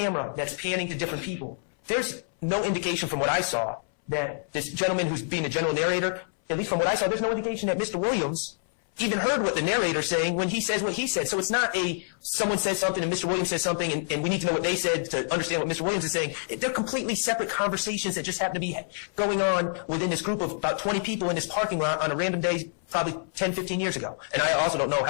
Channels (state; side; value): silent; right; 59 dB below the other